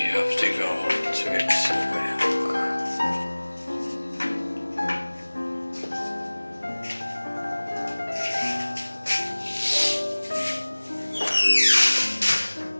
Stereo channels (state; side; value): inverted; both; correlation -1.00